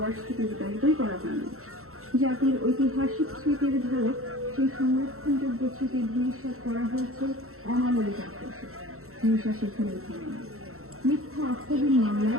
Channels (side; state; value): left; late; 0.63 ms